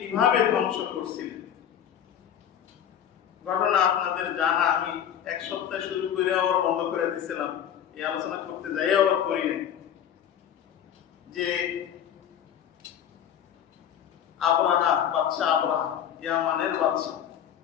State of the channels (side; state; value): right; quieter; 9.5 dB